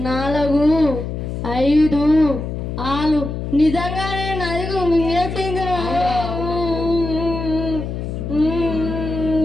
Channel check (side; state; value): left; noise; hum, 5 dB below the sound